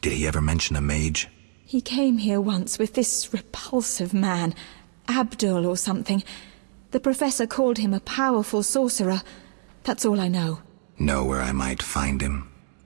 Did he ever mention a mage? He came here once with this repulsive man, Abdul or something. The professor called him a powerful sorcerer. That's all I know. Know where I might find him?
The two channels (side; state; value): left; silent; 62 dB below the other